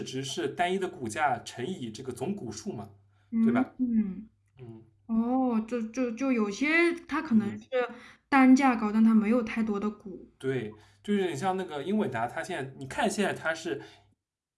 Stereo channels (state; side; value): identical; both; correlation 1.00